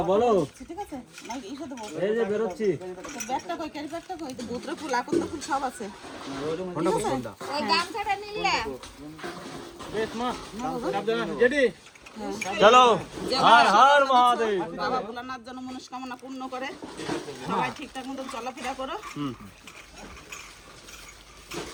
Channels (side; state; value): both; identical; correlation 1.00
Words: बोलो। ঠিক আছে না এইটা দেবো এই যে বেরোচ্ছি। তো ব্যাগটা কই ক্যারি ব্যাগটা কই তো গোদরা ফুল আকন্দ ফুল সব আছে ফোনটা কোন ফোনটা? ওই গামছাটা নিলে বেশ মা, সাবধানে জেডি। चलो, हर हर महादेव। বাবা ভোলানাথ যেন মনস্কামনা পূর্ণ করে সবাই ঠিকঠাক মতো চলাফেরা করো